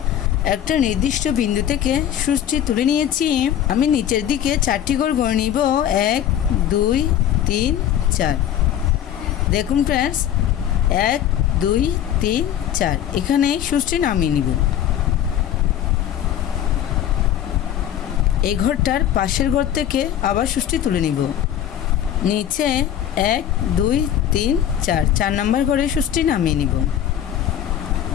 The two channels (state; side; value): quieter; right; 10.7 dB